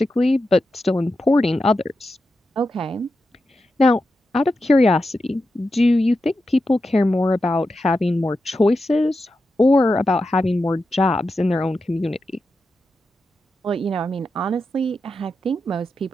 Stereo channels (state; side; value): normal; both; correlation 0.89